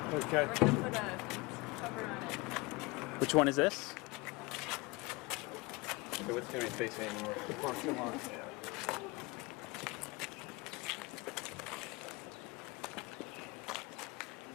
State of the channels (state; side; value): quieter; right; 24.6 dB